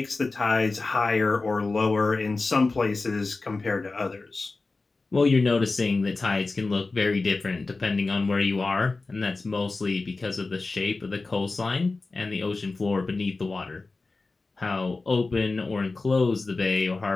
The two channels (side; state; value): right; quieter; 3.7 dB